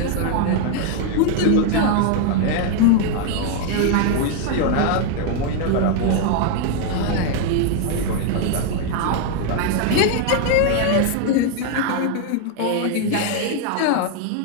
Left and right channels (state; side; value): different; both; correlation 0.00